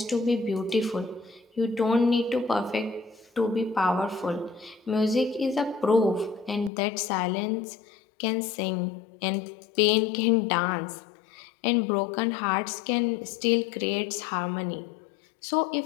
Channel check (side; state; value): right; drops out; at 6.7 s